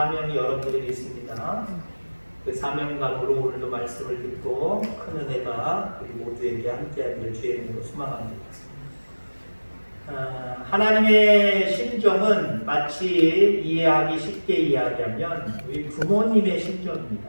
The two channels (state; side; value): inverted; both; correlation -1.00